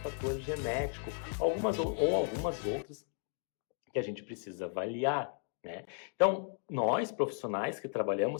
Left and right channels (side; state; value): right; silent; 54 dB below the other